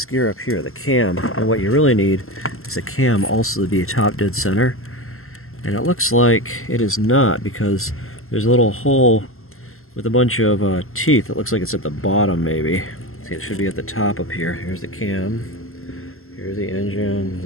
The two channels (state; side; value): late; right; 0.62 ms